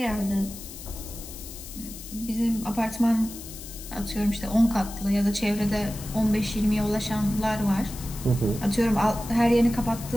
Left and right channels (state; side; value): noise; left; hiss, 13 dB below the sound